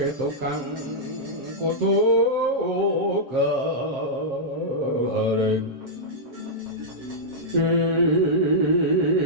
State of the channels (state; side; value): late; left; 7.6 ms